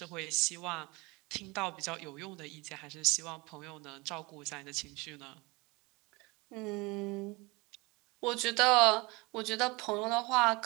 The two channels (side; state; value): left; quieter; 25.1 dB